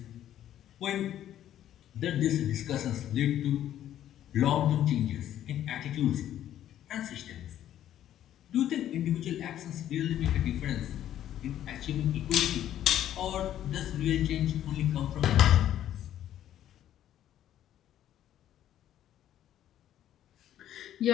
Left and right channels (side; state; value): right; quieter; 11.6 dB